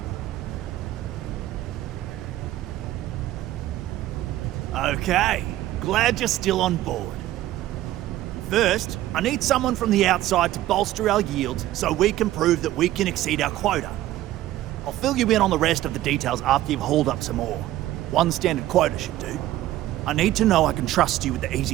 Okay, glad you're still on board. First, I need someone from the outside to bolster our yields so we can prove that we can exceed our quota. I'll fill you in on the rest of the details after you've hauled up some ore. One standard quota should do. I need to know I can trust you with the easy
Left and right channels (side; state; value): left; quieter; 14.7 dB